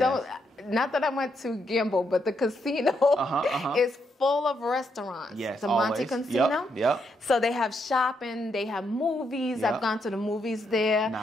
not that I went to gamble, but the casino is full of restaurants. Yes, the Monte always. Casino. Yep. So they have shopping, they have movies. Yep. I've gone to the movies there.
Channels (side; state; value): both; normal; correlation 0.79